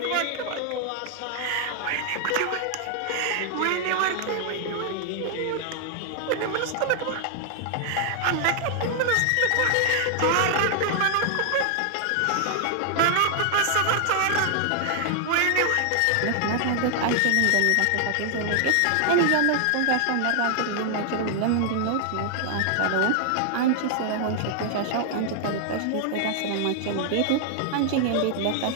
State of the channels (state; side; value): different; both; correlation 0.00